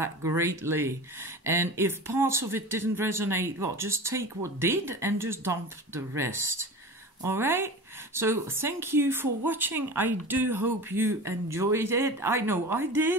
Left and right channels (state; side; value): normal; both; correlation 0.33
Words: greatly. And if parts of it didn't resonate, well, just take what did and just dump the rest. All right? So thank you for watching. I do hope you enjoyed it. I know I